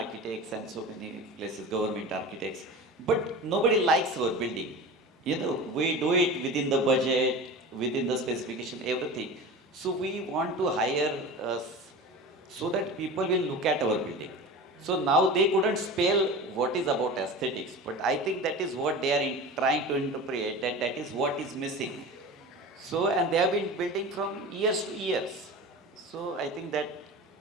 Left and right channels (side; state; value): both; normal; correlation 0.33